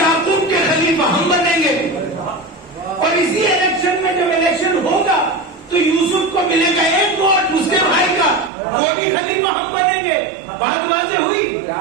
के खलीफा हम बनेंगे, और इसी इलेक्शन में जब इलेक्शन होगा तो यूसुफ को मिलेगा 1 वोट उसके भाई का, वो भी खलीफा हम बनेंगे। बात वाज़ेह हुई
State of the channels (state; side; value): drops out; left; at 8.5 s